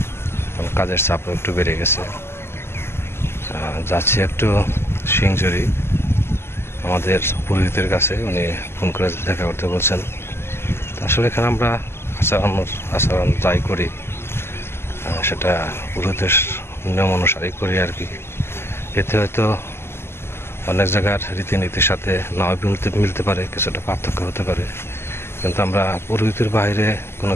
কাজের চাপও একটু বেড়ে গেছে। যাচ্ছি একটু সিংজুরি আমাদের পুরোহিতের কাছে, উনি ফোন করে দেখা করতে বলছেন। আসলে এখানে আমরা আচরণ যাই করি সেটা পুরোহিতের নিয়ম অনুসারেই করি আর কি। এতে হয়তো অনেক জায়গার রীতিনীতির সাথে নাও মিলতে পারে, কিছুটা পার্থক্য হতে পারে, কিন্তু আমরা পুরোহিতের বাইরে কোনো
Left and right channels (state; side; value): late; right; 0.12 ms